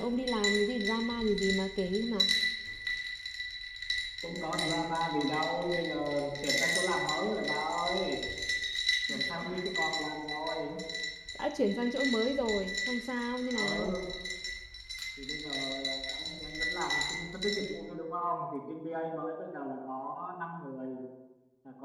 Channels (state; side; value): identical; both; correlation 1.00